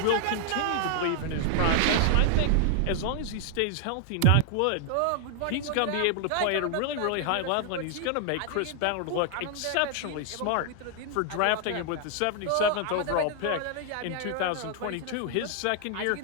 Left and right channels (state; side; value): different; both; correlation 0.00